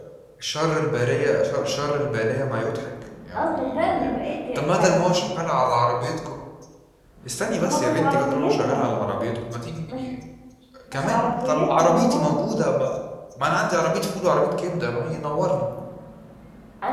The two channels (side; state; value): both; identical; correlation 1.00